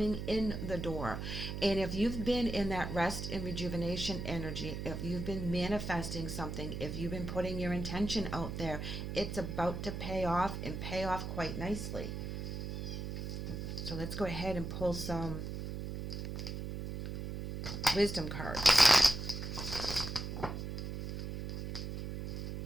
in the door. And if you've been in that rest and rejuvenation energy, if you've been manifesting something, if you've been putting your intention out there, it's about to pay off and pay off quite nicely. So let's go ahead and pull some wisdom cards.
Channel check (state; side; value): noise; right; hum, 5 dB below the sound